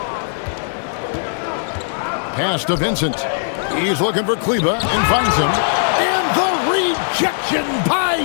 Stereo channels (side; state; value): right; silent; 65 dB below the other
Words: Pass to Vincent. He's looking for Kleber and finds him. And the rejection by